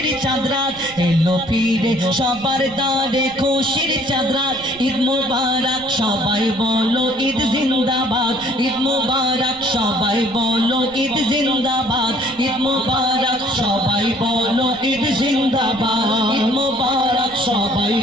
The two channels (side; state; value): right; noise; rumble, 21 dB below the sound